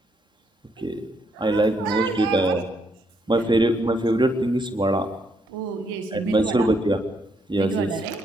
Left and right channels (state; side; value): normal; both; correlation 0.74